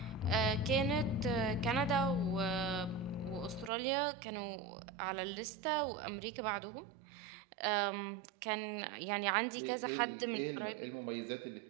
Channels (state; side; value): drops out; left; at 3.7 s